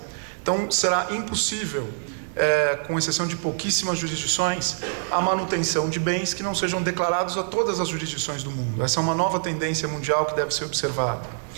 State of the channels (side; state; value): left; silent; 60 dB below the other